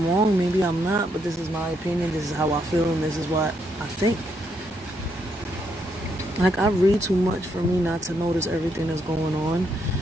wrong, maybe I'm not, but this is my opinion, this is how I feel, and this is what I think. Like, I read too much for me not to notice everything that's going on.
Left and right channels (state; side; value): normal; both; correlation 0.76